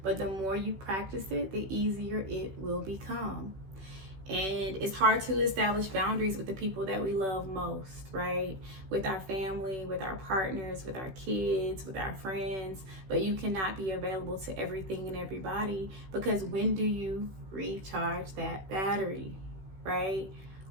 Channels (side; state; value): left; late; 16 ms